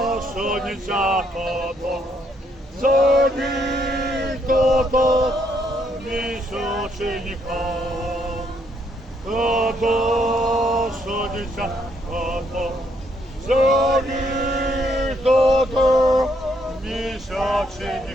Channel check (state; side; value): normal; both; correlation 0.72